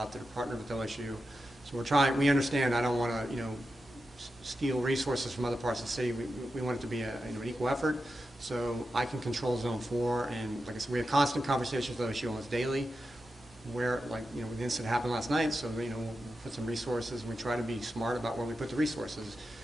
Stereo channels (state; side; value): normal; both; correlation 0.90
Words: that are partnered with LSU. So we understand I don't want to, steal resources from other parts of the city. We want it to be an equal effort. So I can control Zone 4, and like I said, we have constant conversations with LSU almost daily. Where, the incident happened last night, so, we'll put some resources, and we try to be smart about where we put the resources.